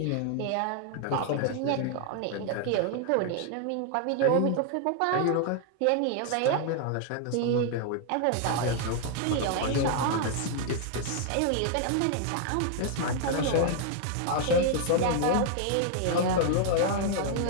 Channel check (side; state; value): both; different; correlation 0.00